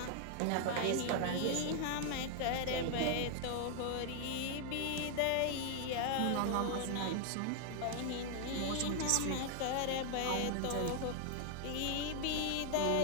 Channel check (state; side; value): different; both; correlation 0.00